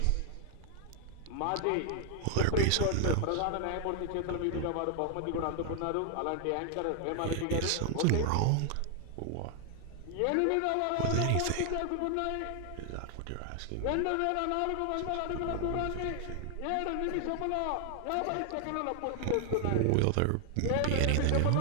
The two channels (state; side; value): different; both; correlation 0.00